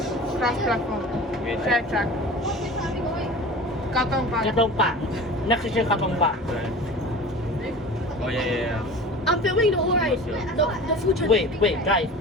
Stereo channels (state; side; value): normal; both; correlation 0.37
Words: cross platform. Wait. Track. Katong Park. Katong Park. Next station, Katong Park. Oh yeah. I'm filming the whole ride. The future. Wait, guys.